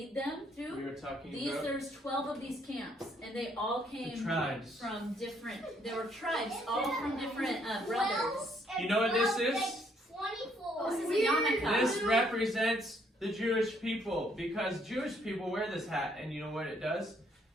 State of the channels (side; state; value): both; normal; correlation 0.69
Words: them through. We were talking these, about there's 12 of these camps, and they all came from different, there were tribes, all from different brothers. You know what this is? 24. This is a yarmulke. This represents the Jewish people, because Jewish people wear this hat, and you know what it does?